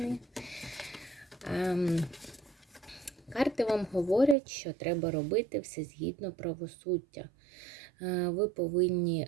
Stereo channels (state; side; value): drops out; left; at 4.4 s